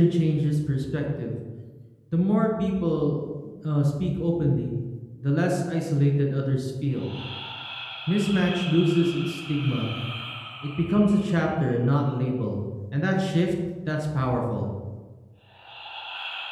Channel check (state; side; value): identical; both; correlation 1.00